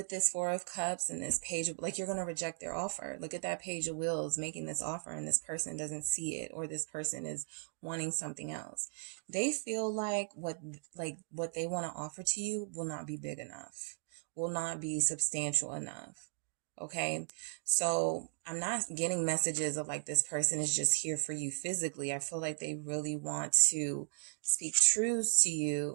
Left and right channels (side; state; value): left; silent; digital silence